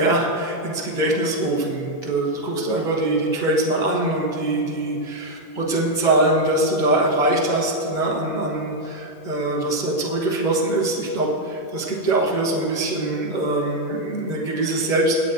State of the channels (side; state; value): right; late; 11 ms